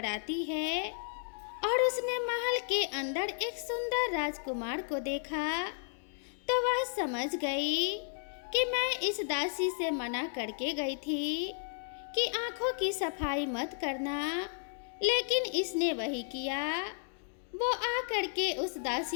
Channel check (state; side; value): silent; right; digital silence